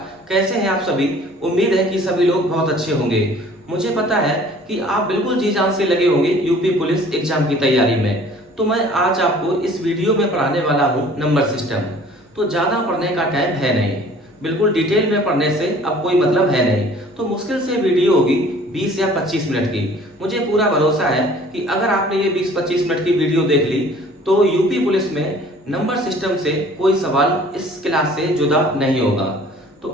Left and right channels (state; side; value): normal; both; correlation 0.51